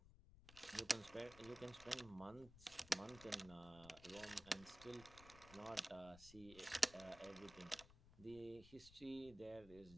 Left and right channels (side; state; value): left; noise; rumble, 17 dB below the sound